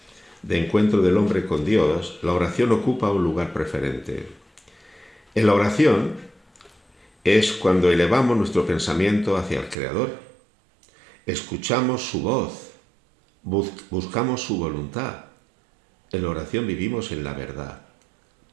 de encuentro del hombre con Dios, la oración ocupa un lugar preferente. En la oración es cuando elevamos nuestro pensamiento hacia el Creador, escuchamos su voz, buscamos su voluntad. En la oración vivimos en la verdad.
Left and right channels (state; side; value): drops out; left; at 9.8 s